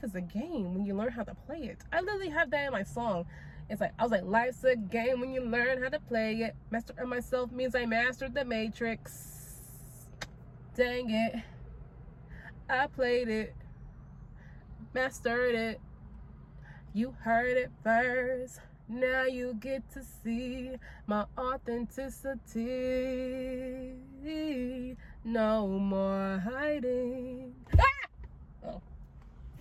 is a game when you learn how to play it. I literally have that in my song. It's like, I was like, life's a game when you learn how to play it. Master myself means I mastered the matrix. Dang it. I played it. Mastered it. You heard it first. Now you get to see my authenticity. No more hiding. Ah! Oh.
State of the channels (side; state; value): both; identical; correlation 1.00